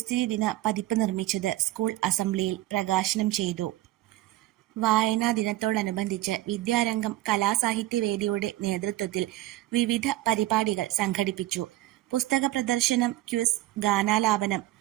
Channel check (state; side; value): quieter; left; 15.9 dB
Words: ദിന പതിപ്പ് നിർമ്മിച്ചത് സ്കൂൾ അസംബ്ലിയിൽ പ്രകാശനം ചെയ്തു. വായനാ ദിനത്തോടനുബന്ധിച്ച് വിദ്യാരംഗം കലാസാഹിത്യവേദിയുടെ നേതൃത്വത്തിൽ വിവിധ പരിപാടികൾ സംഘടിപ്പിച്ചു. പുസ്തക പ്രദർശനം, ക്വിസ്, ഗാനാലാപനം,